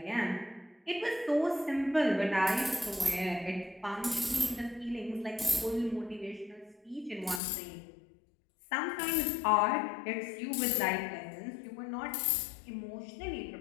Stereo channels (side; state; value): right; drops out; at 7.4 s